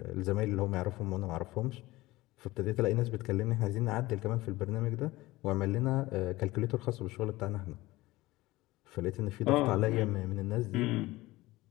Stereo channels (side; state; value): right; quieter; 19.1 dB